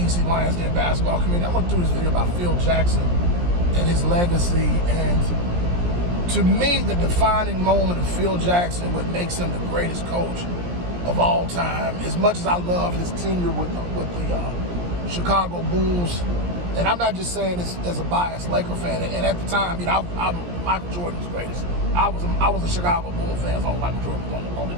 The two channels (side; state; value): left; late; 17 ms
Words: Lions Den basketball community. I want to do this video about Phil Jackson and his legacy. And to me, the defining moment of Phil Jackson, what makes him the greatest coach of all time, as much as I love his tenure with the Chicago Bulls, and I'm not just saying this as a biased Laker fan. And at the time, I'm Michael Jordan's greatest. I was a Chicago Bulls fan, so Michael Jordan was on the